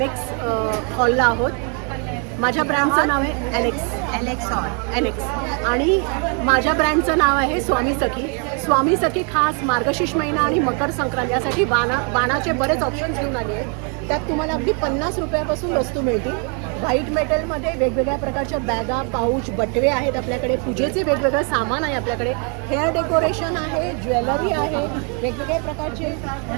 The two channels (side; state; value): left; quieter; 38.2 dB